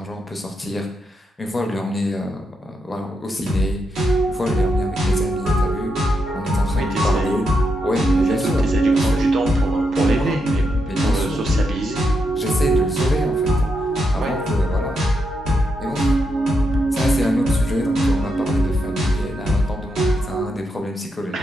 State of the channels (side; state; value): both; normal; correlation 0.82